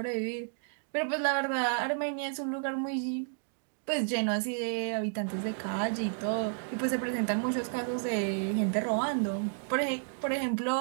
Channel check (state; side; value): silent; left; digital silence